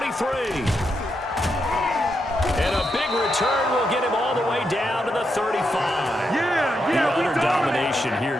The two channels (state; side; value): normal; both; correlation 0.83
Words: And a big return will get him all the way down to the 35. The utter domination here